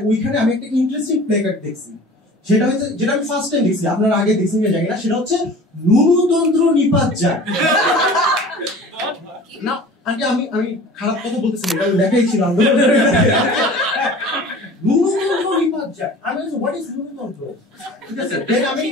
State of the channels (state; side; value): normal; both; correlation 0.43